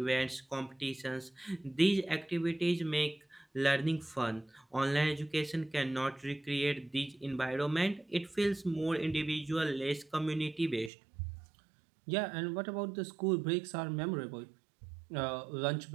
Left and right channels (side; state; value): left; drops out; at 10.9 s